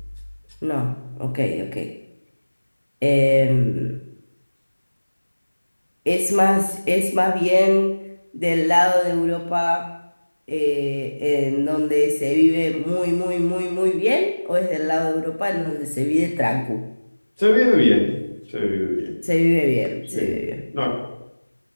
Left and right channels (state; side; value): inverted; both; correlation -1.00